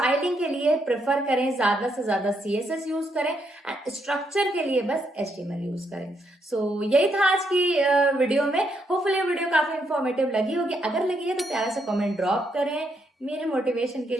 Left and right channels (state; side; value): normal; both; correlation 0.77